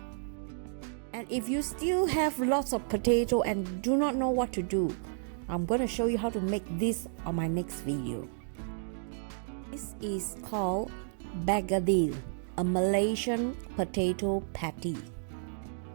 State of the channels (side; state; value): left; silent; digital silence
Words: And if you still have lots of potato and do not know what to do, I'm going to show you how to make this on my next video. This is called bagadil, a Malaysian potato patty.